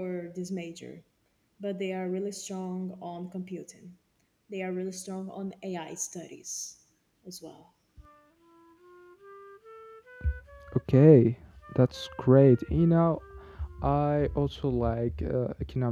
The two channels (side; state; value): both; identical; correlation 1.00